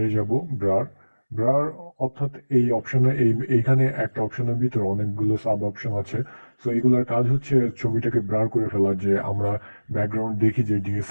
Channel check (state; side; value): inverted; both; correlation -1.00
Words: যাব, ব্রার, ব্রার অর্থাৎ এই অপশনে এইখানে একটা অপশনের ভিতরে অনেকগুলো সাব অপশন আছে। সো এগুলোর কাজ হচ্ছে ছবিটাকে ব্রার করে ফেলা, যে আমরা ব্যাকগ্রাউন্ড দেখি যে